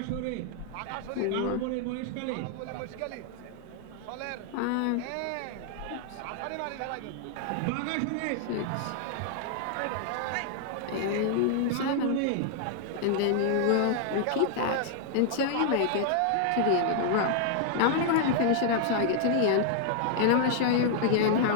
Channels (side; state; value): both; different; correlation 0.00